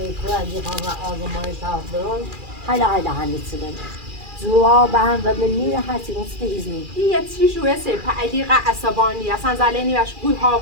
ریکو از میخوام و آزمایش ها برون حالا هنیت سلم جواب هم و من میره هرچی نسته ایزنی یه چی شوه سپا علیقه عصبانی اصلا زلینی وش گوی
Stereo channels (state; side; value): late; left; 2.4 ms